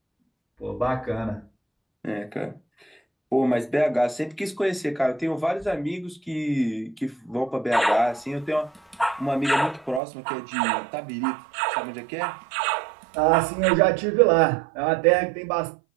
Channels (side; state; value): left; drops out; at 10.0 s